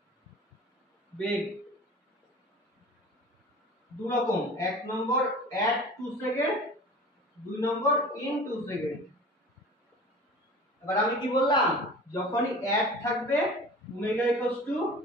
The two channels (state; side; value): normal; both; correlation 0.40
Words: বেগ দু রকম, এক নম্বর at 2 সেকেন্ড, দুই নম্বর in 2 সেকেন্ড। এবার আমি কি বললাম, যখনই at থাকবে ওমেগা